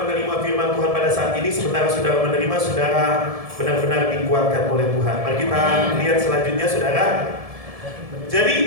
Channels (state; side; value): late; left; 1.7 ms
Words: menerima firman Tuhan pada saat ini, sementara saudara menerima, saudara benar-benar dikuatkan oleh Tuhan. Mari kita lihat selanjutnya, saudara. Jadi